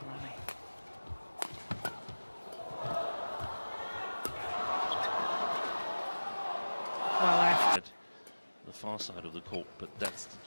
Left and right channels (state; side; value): inverted; both; correlation -1.00